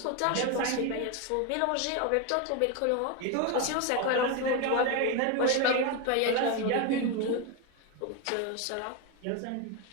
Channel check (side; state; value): both; different; correlation 0.02